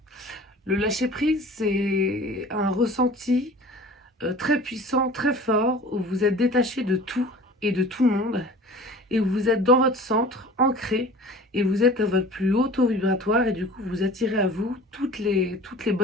Le lâcher prise, c'est un ressenti très puissant, très fort, où vous êtes détaché de tout et de tout le monde, et où vous êtes dans votre centre, ancré, et vous êtes à votre plus haut taux vibratoire, et du coup vous attirez à vous toutes les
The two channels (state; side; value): normal; both; correlation 0.43